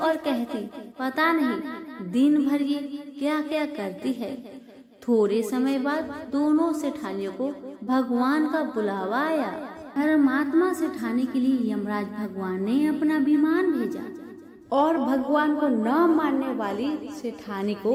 कहती, पता नहीं दिन भर ये क्या क्या करती है। थोड़े समय बाद दोनों सेठानियों को भगवान का बुलावा आया। धर्मात्मा सेठानी के लिए यमराज भगवान ने अपना विमान भेजा और भगवान को न मानने वाली सेठानी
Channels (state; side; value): identical; both; correlation 1.00